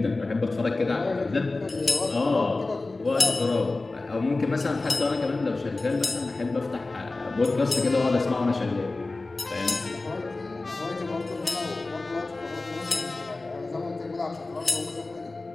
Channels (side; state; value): right; quieter; 3.3 dB